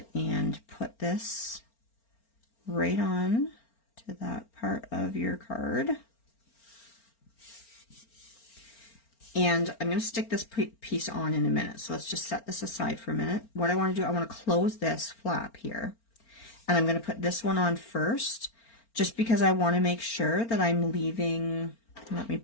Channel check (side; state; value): right; late; 4.4 ms